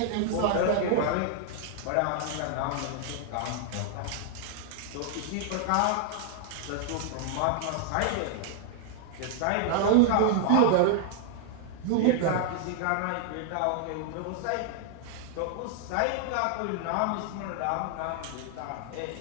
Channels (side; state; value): both; different; correlation 0.00